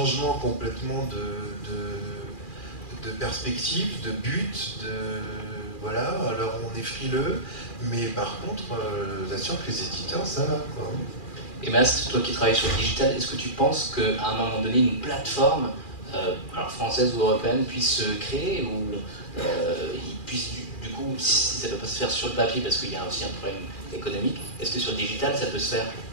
complètement de perspective, de but, voilà, alors on est frileux, mais par contre, je vous assure que les éditeurs, ça va, quoi. Et Mast, toi qui travailles sur le digital, est-ce que tu penses qu'à un moment donné, une plateforme, alors française ou européenne, puisse se créer, ou il puisse, du coup, si ça ne peut pas se faire sur le papier, parce qu'il y a aussi un problème économique, est-ce que sur le digital, ça peut se faire?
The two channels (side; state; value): right; late; 2.4 ms